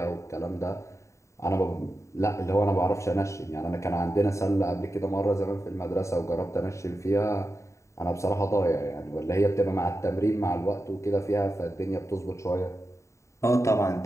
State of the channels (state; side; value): late; right; 0.14 ms